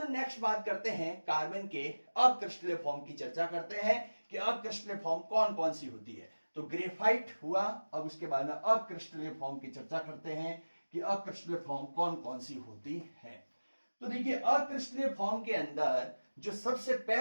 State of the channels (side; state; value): both; inverted; correlation -1.00